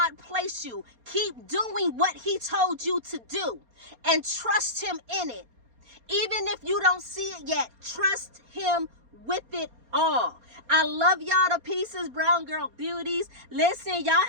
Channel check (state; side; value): late; left; 4.3 ms